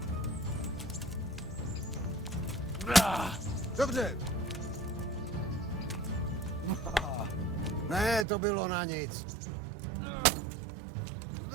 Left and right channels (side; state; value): left; drops out; at 8.2 s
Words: Dobře. Ne, to bylo na nic.